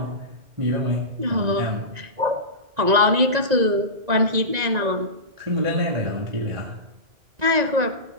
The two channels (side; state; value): left; late; 1.9 ms